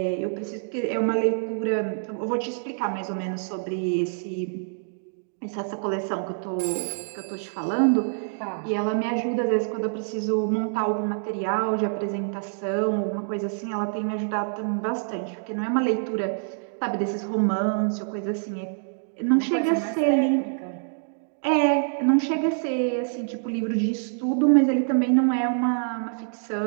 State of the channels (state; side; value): silent; left; digital silence